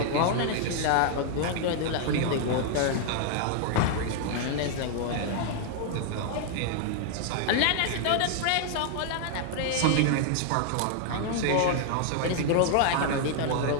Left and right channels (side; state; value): both; different; correlation 0.00